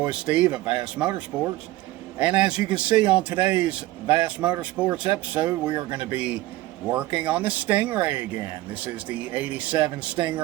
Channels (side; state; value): left; quieter; 17.3 dB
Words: Steve at Vassmotorsports, and as you can see on today's Vassmotorsports episode, we are going to be working on the Stingray again. This is the 87